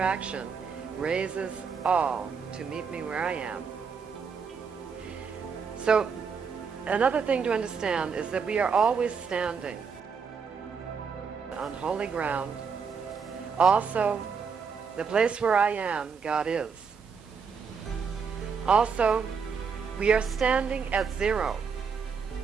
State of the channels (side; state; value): left; quieter; 5.9 dB